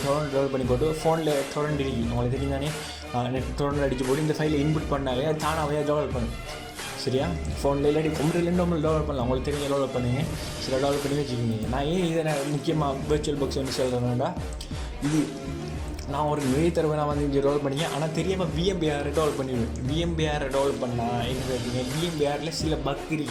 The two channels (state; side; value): identical; both; correlation 1.00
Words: டொரண்ட் டெவலப் பண்ணி போட்டு ஃபோனில் டொரண்ட் இருக்கு உங்களுக்கு தெரியும் தானே. நெட் டொரண்ட் அடித்து போட்டு இந்த ஃபைலை இன்புட் பண்ணாலே அது தானாகவே டெவலப் பண்ணும். சரியா? ஃபோனில் இல்லாட்டி கம்ப்யூட்டர்லேருந்து நம்மளுக்கு டெவலப் பண்ணலாம். உங்களுக்கு தெரிஞ்ச டெவலப் பண்ணுங்கள். சில டெவலப் பண்ணி வச்சுக்கோங்க. நான் ஏன் இதை முக்கியமாக விர்ச்சுவல் பாக்ஸ் வந்து சொல்கிறேன்னா இது நான் ஒரு நிறைய தடவை நான் வந்து இங்கே டெவலப் பண்ணிக்கேன். ஆனால் தெரியாமல் VMware டெவலப் பண்ணிடுவேன். VMware டெவலப் பண்ணால் என்ன பார்த்தீங்க VMwareல சில பக்